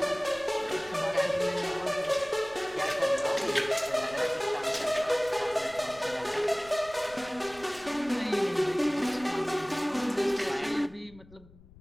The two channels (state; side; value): noise; left; rumble, 23 dB below the sound